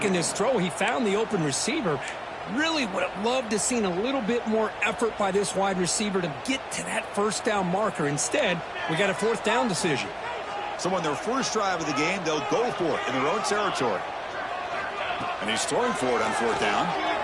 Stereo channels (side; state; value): both; identical; correlation 1.00